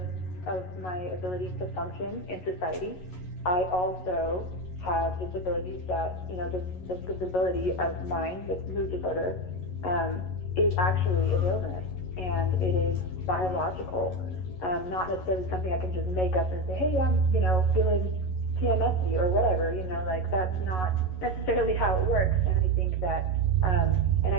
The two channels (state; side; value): late; right; 11 ms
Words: of my ability to function in society, I also have disabilities that, this disability of mine, this mood disorder, is actually an illness, and it is biological, not necessarily something I can just make up and say, hey, I'm, feeling PMS-y or whatever, that's not necessarily how it works. And I think that, and